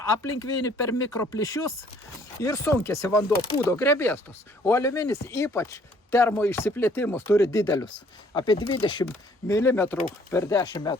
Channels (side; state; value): both; normal; correlation 0.60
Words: aplink vinį per mikroplyšius ir sunkėsi vanduo, pūdo grebėstus. O aliuminis ypač termo išsiplėtimus turi didelius, apie 20 mm per 10